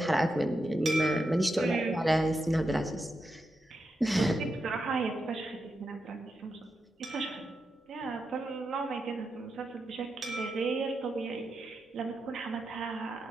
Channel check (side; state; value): both; normal; correlation 0.87